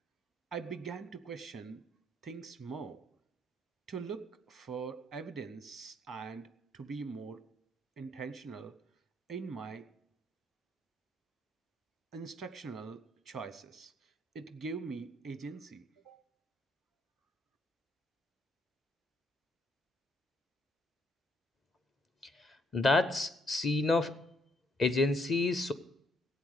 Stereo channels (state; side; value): normal; both; correlation 0.70